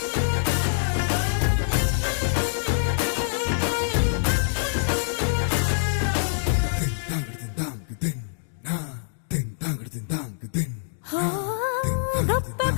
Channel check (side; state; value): right; silent; digital silence